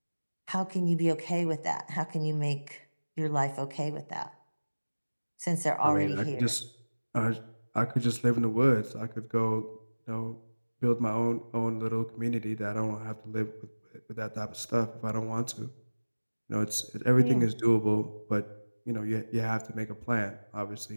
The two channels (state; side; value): inverted; both; correlation -1.00